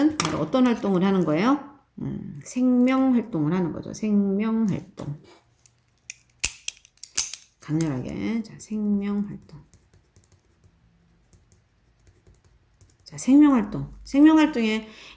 바로 어떤 활동을 하는 거예요? 생명 활동을 하는 거죠. 생명 활동. 강렬하게. 자, 생명 활동. 자, 생명 활동. 생명 활동에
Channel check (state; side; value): identical; both; correlation 1.00